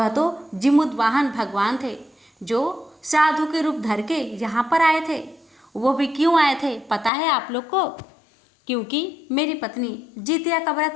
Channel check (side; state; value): right; drops out; at 7.1 s